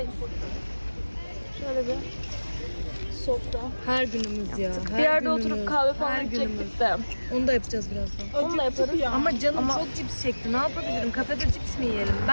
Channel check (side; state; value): both; inverted; correlation -1.00